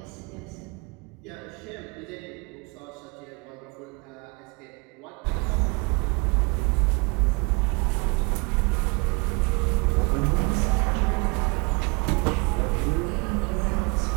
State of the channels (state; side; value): quieter; left; 29.9 dB